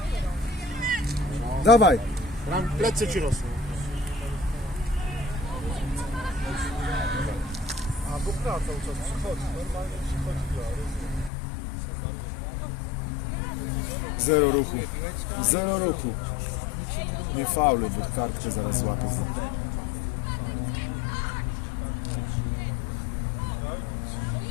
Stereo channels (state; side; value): drops out; right; at 11.3 s